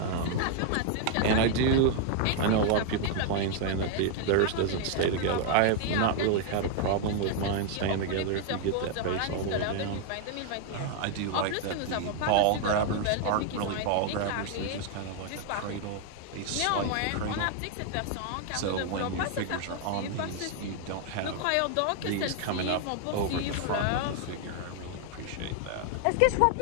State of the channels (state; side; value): different; both; correlation 0.00